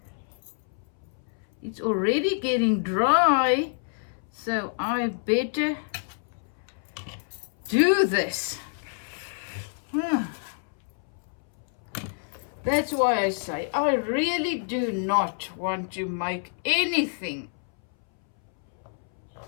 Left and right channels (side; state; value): right; silent; 60 dB below the other